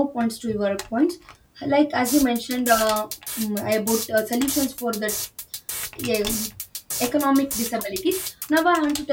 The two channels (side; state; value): both; identical; correlation 1.00